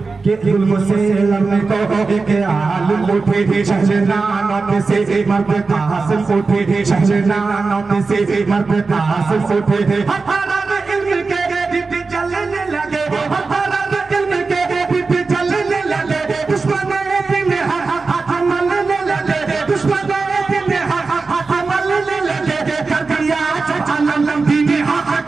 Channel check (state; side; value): quieter; left; 4.2 dB